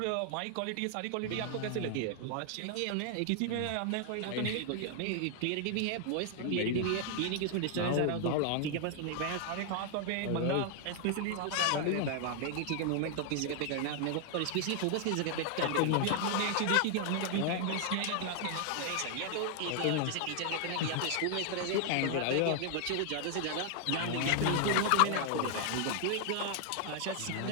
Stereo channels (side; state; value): both; different; correlation 0.00